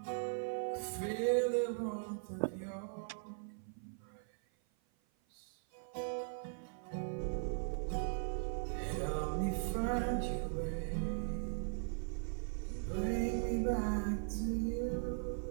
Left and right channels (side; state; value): left; silent; 51 dB below the other